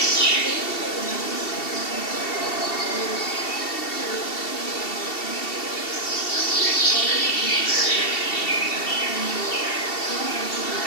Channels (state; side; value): late; right; 2.7 ms